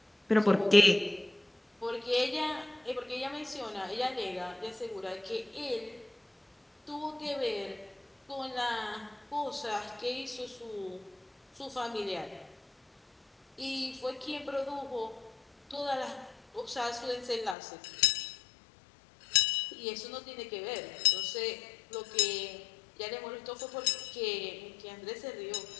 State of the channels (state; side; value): drops out; right; at 17.6 s